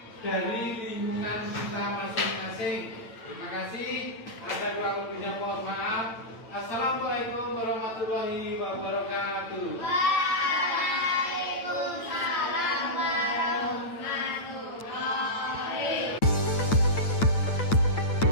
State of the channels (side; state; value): right; late; 9.0 ms